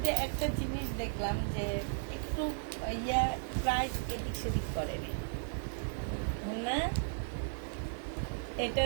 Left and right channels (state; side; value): silent; left; digital silence